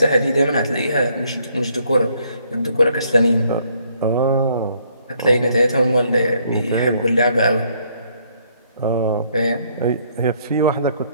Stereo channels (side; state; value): both; inverted; correlation -0.68